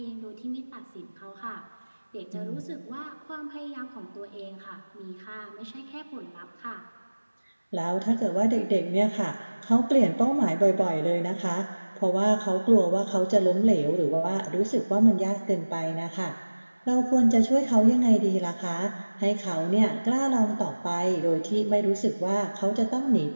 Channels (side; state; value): both; inverted; correlation -1.00